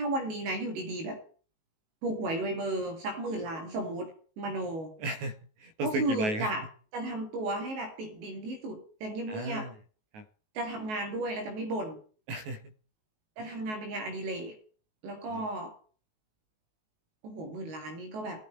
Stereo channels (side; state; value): left; late; 19 ms